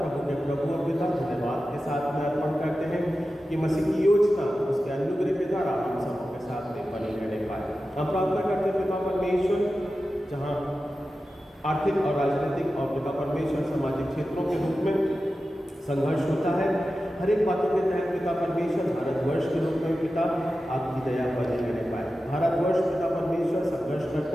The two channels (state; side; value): normal; both; correlation 0.93